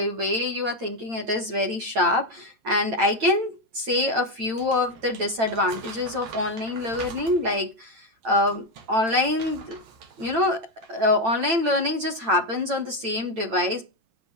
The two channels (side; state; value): left; late; 8.9 ms